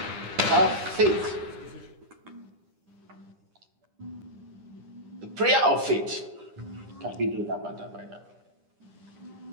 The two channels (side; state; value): left; late; 10 ms